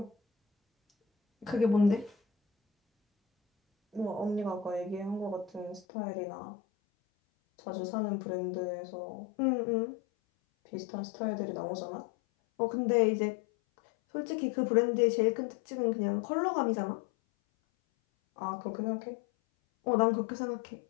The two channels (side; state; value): right; drops out; at 5.8 s